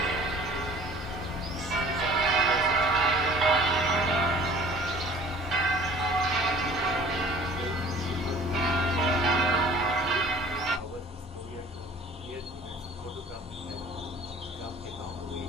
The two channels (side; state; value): both; normal; correlation 0.49